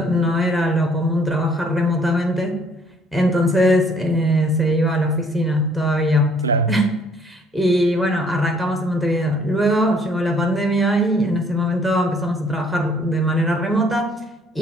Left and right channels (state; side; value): normal; both; correlation 0.61